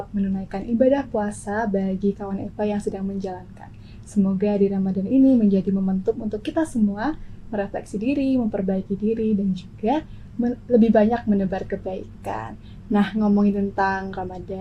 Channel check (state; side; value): identical; both; correlation 1.00